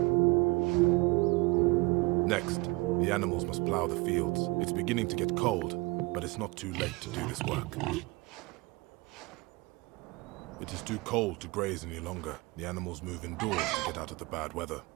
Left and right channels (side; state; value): left; quieter; 24.8 dB